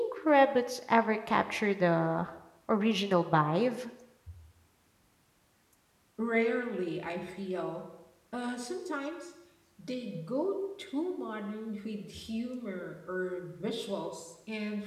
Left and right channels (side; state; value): both; identical; correlation 1.00